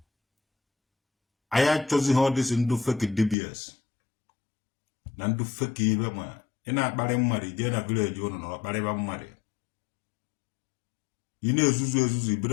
Anyị achọzighị ọ dịsị ndụ fake dibias na ndụ fake ibe. Ma ị na-akparị mmadụ jee na vileji ụnụ na ọkparịba mmadụ, ị na-ezuzu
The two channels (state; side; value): drops out; right; at 3.4 s